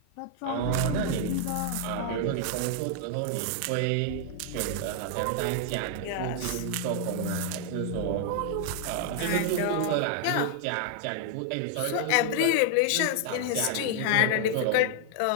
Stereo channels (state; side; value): different; both; correlation 0.00